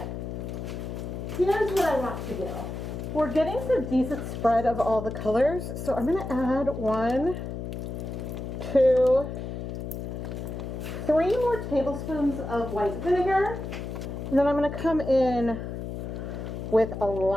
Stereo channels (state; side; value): noise; left; hum, 6 dB below the sound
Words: here's what I want to do. We're getting some decent spread of all the colors, so I'm going to add 1, 2, 3 more tablespoons of white vinegar. And then I'm going to come in with a